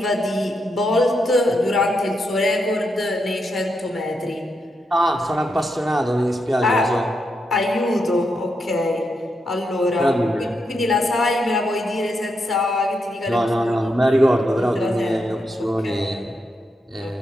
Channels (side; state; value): both; normal; correlation 0.83